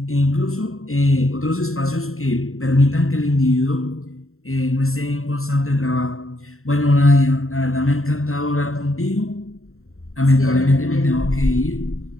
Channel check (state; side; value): late; right; 0.62 ms